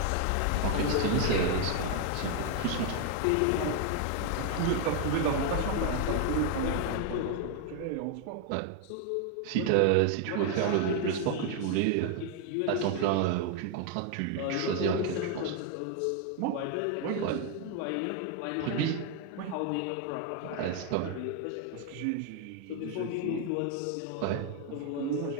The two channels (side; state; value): both; different; correlation 0.01